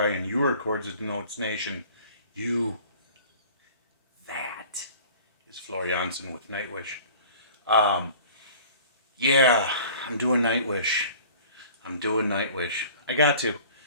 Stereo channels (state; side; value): inverted; both; correlation -0.46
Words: You are Chords and Notes Nation. You, that is Florianson with Nightwish. Um, yeah, I'm doing Nightwish. I'm doing Nightwish. I got to.